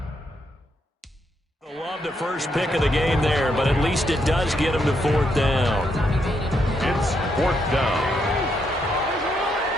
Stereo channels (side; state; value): both; normal; correlation 0.78